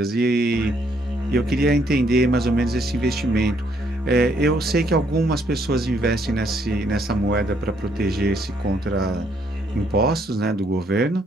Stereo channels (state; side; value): normal; both; correlation 0.70